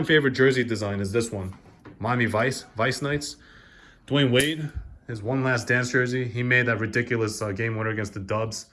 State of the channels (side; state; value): both; identical; correlation 1.00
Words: favorite jersey design is this one. Miami Vice Knights. Dwayne Wade, his One Last Dance jersey. He made that ridiculous game winner against the Dubs.